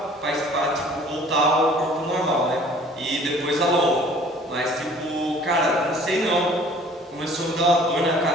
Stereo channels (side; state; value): both; normal; correlation 0.52